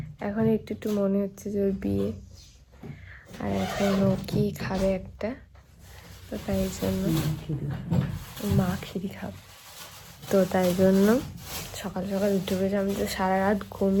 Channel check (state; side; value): identical; both; correlation 1.00